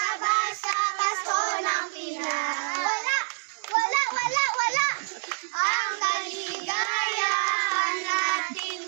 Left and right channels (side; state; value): left; silent; digital silence